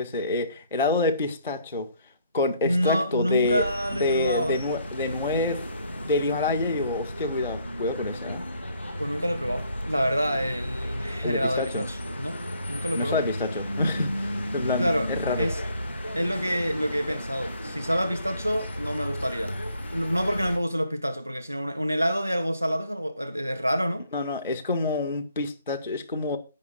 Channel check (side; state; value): both; inverted; correlation -0.67